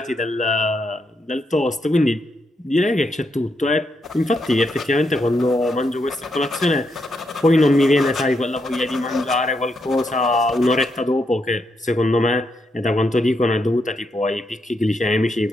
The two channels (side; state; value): both; normal; correlation 0.80